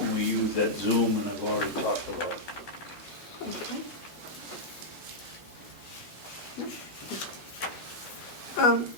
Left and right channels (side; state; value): both; normal; correlation -0.06